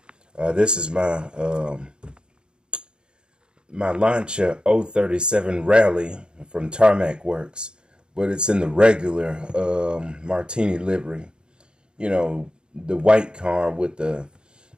This is my Lancia 037 Rally from Tarmac Works, but it's in the regular Martini livery. The white car with the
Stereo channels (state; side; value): late; left; 0.050 ms